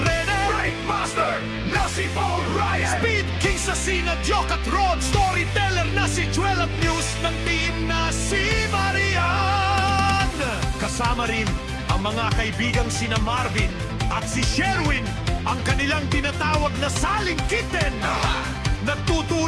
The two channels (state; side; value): identical; both; correlation 1.00